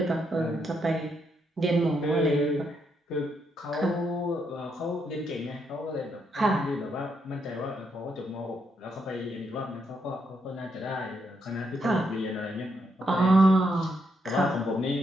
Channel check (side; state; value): both; normal; correlation 0.78